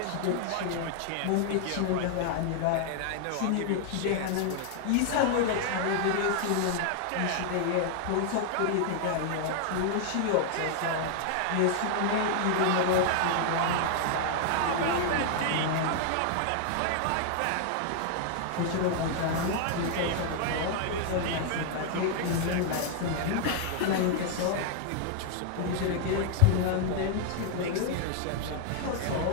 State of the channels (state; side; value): different; both; correlation 0.00